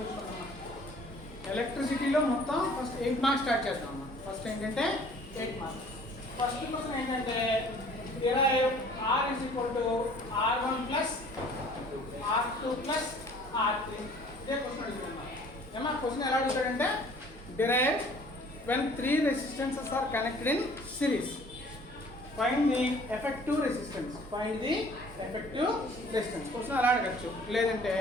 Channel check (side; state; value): both; normal; correlation 0.52